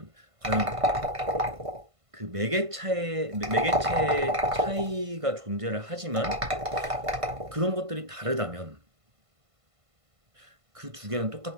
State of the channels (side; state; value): left; late; 1.5 ms